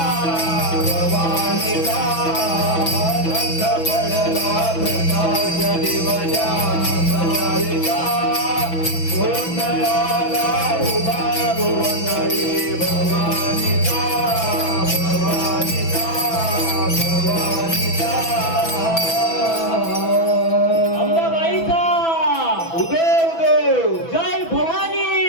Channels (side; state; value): right; late; 6.1 ms